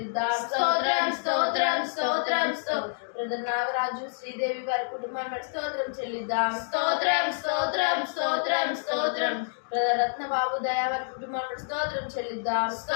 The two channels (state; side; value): silent; right; digital silence